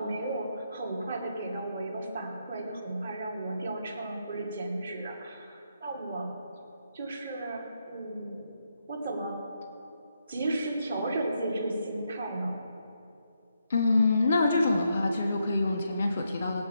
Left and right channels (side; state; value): both; inverted; correlation -0.80